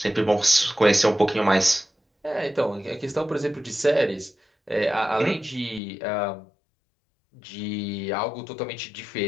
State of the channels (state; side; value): drops out; right; at 5.8 s